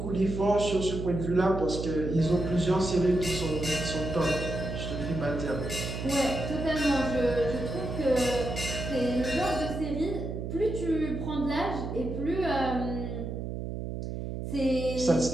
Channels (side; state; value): right; noise; hum, 5 dB below the sound